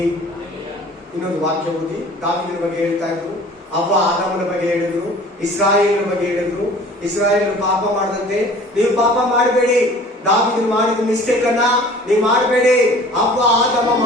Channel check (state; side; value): normal; both; correlation 0.47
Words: ಇನ್ನೊಂದು ವಾಕ್ಯ ಓದಿ. ದಾವೀದನ ಬಗ್ಗೆ ಹೇಳ್ತಾ ಇದ್ರು, ಅವ್ವ ಆದಾಮನ ಬಗ್ಗೆ ಹೇಳಿದ್ರು, ಇಸ್ರಾಯೇಲರ ಬಗ್ಗೆ ಹೇಳಿದ್ರು. ಇಸ್ರಾಯೇಲರು ಪಾಪ ಮಾಡದಂತೆ ನೀವು ಪಾಪ ಮಾಡಬೇಡಿ. ದಾವೀದನು ಮಾಡಿದ ಮಿಸ್ಟೇಕ್ ಅನ್ನ ನೀವು ಮಾಡಬೇಡಿ. ಅವ್ವ ಆದಾಮ